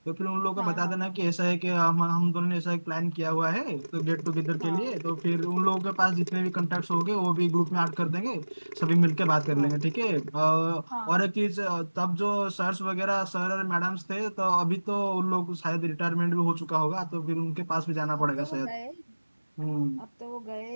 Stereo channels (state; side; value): inverted; both; correlation -1.00